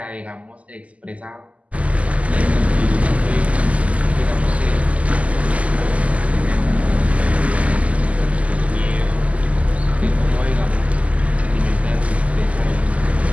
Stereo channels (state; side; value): late; left; 0.068 ms